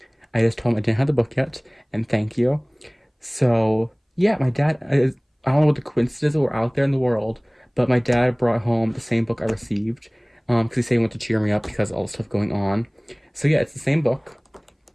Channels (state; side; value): identical; both; correlation 1.00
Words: I just told him I didn't have the book yet, and thank you. So yeah, my dad, I don't know what the coincidences were out there in the world, but my dad brought home the same book I received, because he said he wanted to cheer me up because of all the stuff going on. So yeah, it's the same book,